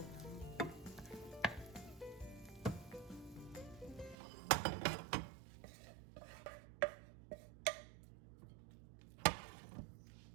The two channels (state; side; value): drops out; left; at 4.2 s